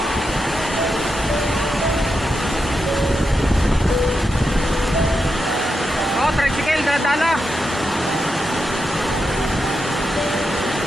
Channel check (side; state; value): both; normal; correlation 0.87